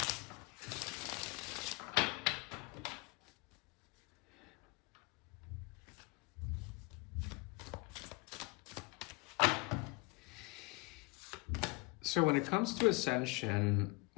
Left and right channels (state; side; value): quieter; right; 26.4 dB